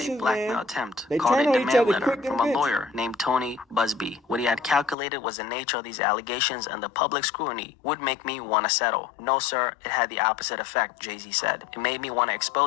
a blackmail attempt, called a demand letter from a lawyer named Tony Busby. What he had calculated was the nature of these allegations and the public scrutiny would make me want to settle. No sir, it had the opposite effect, Jay-Z said. It made me want to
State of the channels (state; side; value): drops out; right; at 5.0 s